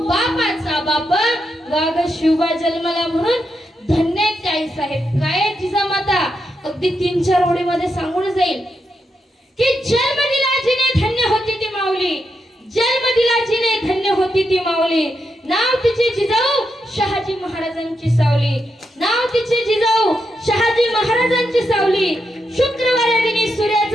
बापाचा बाप वाघ शिवबा जन्माला. म्हणून धन्य आई साहेब. काय जिजामाता अगदी 3-4 ओळीमध्ये सांगून जाईल की जन्म दिला जिने धन्य होती ती माऊली, जन्म दिला जिने धन्य होती ती माऊली. नाव तिचे जिजाऊ शहाजी महाराजांची सावली, नाव तिचे जिजाऊ शहाजी महाराजांची सावली. शुक्रवार दिनी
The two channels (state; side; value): normal; both; correlation 0.84